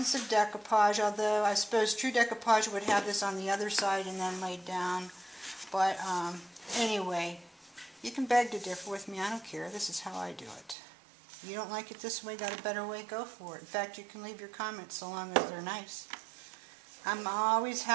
of decoupage, although I suppose true decoupage would have this on the other side and then laid down. But anyway, you can beg to differ with me. I don't care. This is how I do it. You don't like it this way, got a better way, go for it. In fact, you can leave your comments so long as they're nice. I'm always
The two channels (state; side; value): drops out; left; at 10.8 s